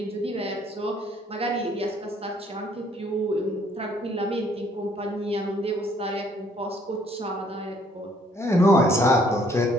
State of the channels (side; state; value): both; normal; correlation 0.63